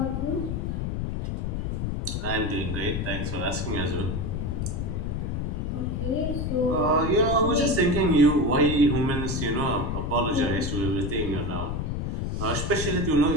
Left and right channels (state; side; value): noise; left; rumble, 1 dB below the sound